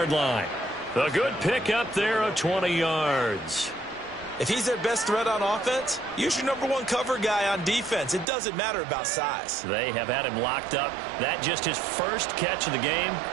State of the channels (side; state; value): left; drops out; at 8.2 s